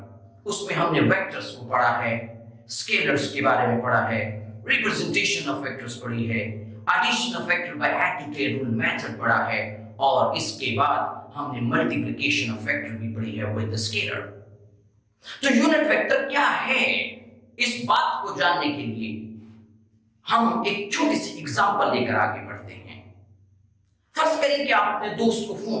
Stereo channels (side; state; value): both; identical; correlation 1.00